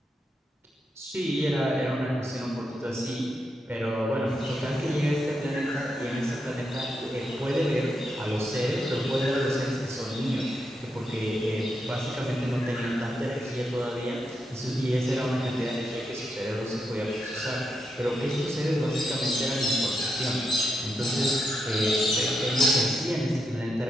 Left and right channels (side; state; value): both; normal; correlation 0.83